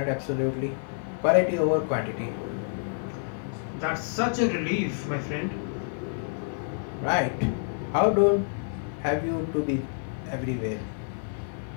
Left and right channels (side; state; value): right; silent; 57 dB below the other